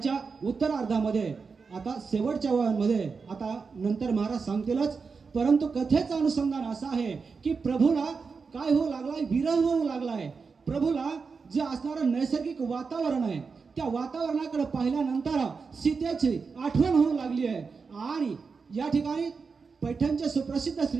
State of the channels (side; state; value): left; quieter; 5.0 dB